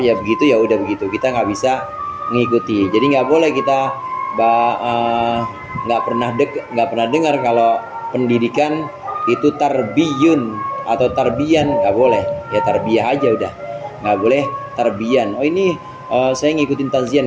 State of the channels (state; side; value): identical; both; correlation 1.00